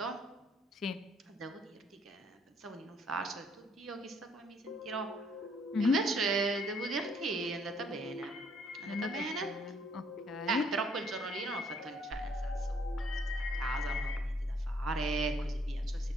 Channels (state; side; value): normal; both; correlation 0.66